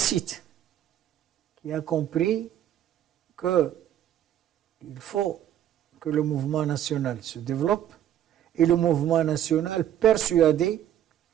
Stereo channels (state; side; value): quieter; left; 11.0 dB